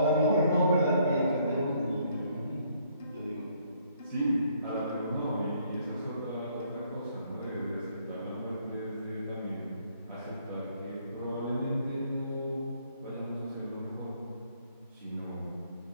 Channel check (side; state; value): both; inverted; correlation -0.66